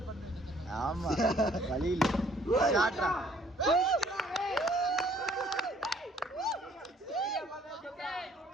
ஆமா வலியில ஷாட்ரா.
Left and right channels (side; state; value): both; normal; correlation 0.60